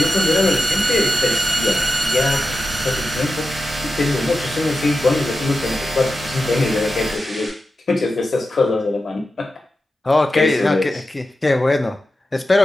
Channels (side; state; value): both; normal; correlation 0.92